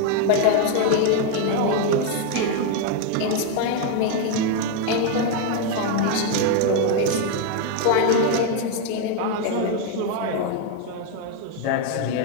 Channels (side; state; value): both; different; correlation 0.01